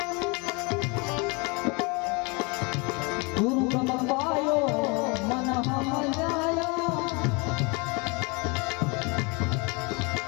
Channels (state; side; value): quieter; right; 30.0 dB